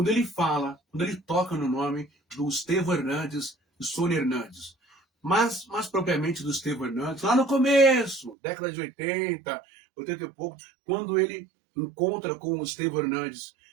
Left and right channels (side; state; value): left; drops out; at 8.3 s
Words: ele fala, quando ele toca no nome do Estevão Hernandes e Sônia Hernandes. Mas, mais propriamente do Estevão Hernandes, lá no começo, década de 80, 80 e pouco, quando ele encontra com o Estevão Hernandes.